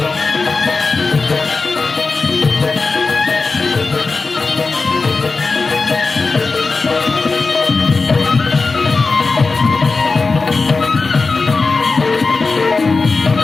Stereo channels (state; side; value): quieter; right; 4.0 dB